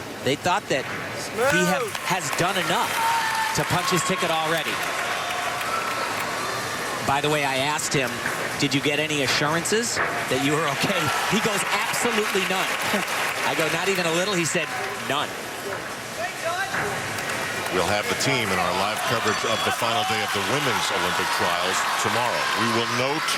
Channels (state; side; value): identical; both; correlation 1.00